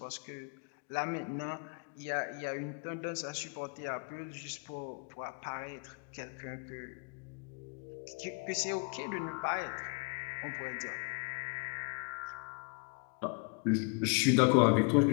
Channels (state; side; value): quieter; right; 33.6 dB